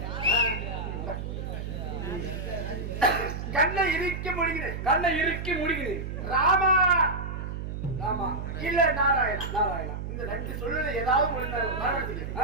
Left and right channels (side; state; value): right; noise; hum, 6 dB below the sound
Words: கண்ணை இறுக்கி முடிகிறேன். கண்ணை இறுக்கி முடிகிறேன். ராமா ராமா இல்ல நாராயணா. நாராயணா இந்த ரெண்டு சொல்லுல ஏதாவது ஒண்ணு